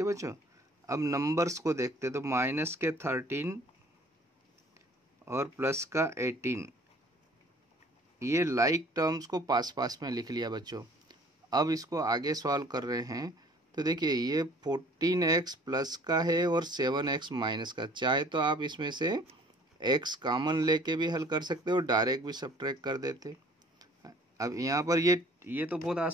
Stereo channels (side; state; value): both; normal; correlation 0.53